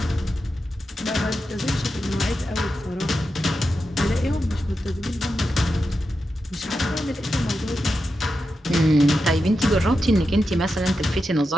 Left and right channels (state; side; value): normal; both; correlation 0.89